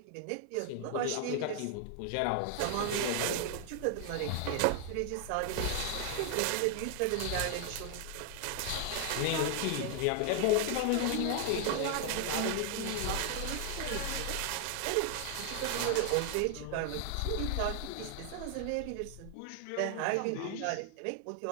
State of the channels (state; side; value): different; both; correlation 0.00